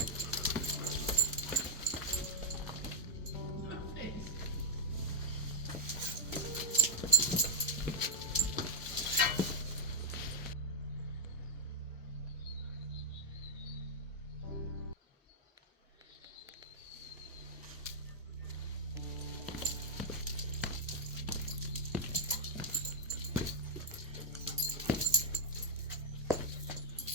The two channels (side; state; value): both; normal; correlation 0.00